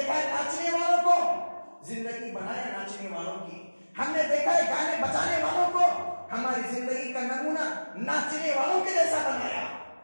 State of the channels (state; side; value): inverted; both; correlation -1.00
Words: ہے ناچنے والوں کو, زندگی بنایا ناچنے والوں کی. ہم نے دیکھا ہے گانے بجانے والوں کو, ہماری زندگی کا نمونہ ناچنے والوں کے جیسا بنایا,